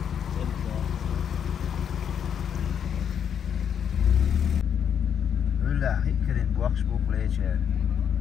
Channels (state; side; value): quieter; right; 8.2 dB